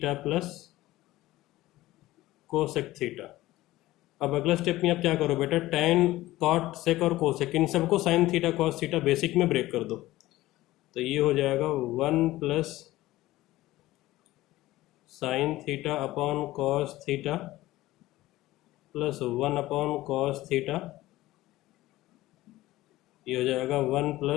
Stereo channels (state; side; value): quieter; right; 16.9 dB